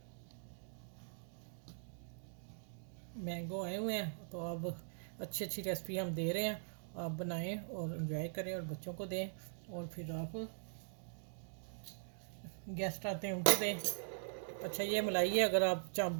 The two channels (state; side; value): silent; left; digital silence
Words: मैंगो आए हुए हैं, तो अब अच्छी अच्छी रेसिपी हम दे रहे हैं, आप बनाएं और एंजॉय करें और बच्चों को दें, और फिर आप गेस्ट आते हैं उनको दें। अच्छा, ये मलाई है, अगर आप चाप